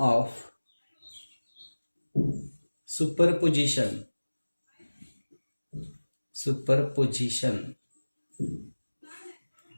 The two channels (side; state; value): both; inverted; correlation -1.00